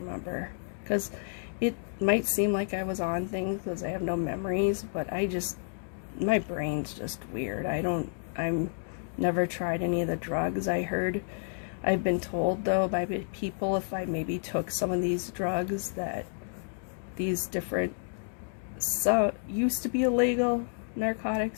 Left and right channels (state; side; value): silent; right; digital silence